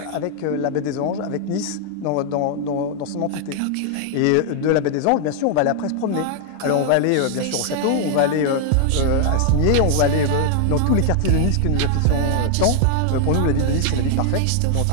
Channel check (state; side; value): different; both; correlation 0.00